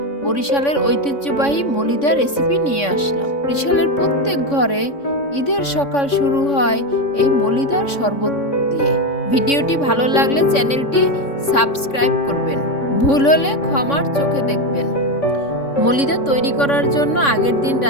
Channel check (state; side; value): late; right; 3.6 ms